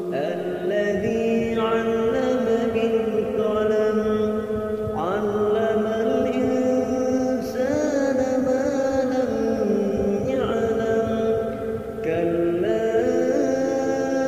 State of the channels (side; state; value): both; identical; correlation 1.00